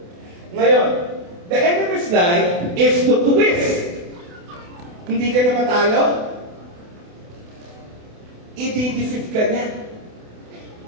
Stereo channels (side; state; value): left; late; 28 ms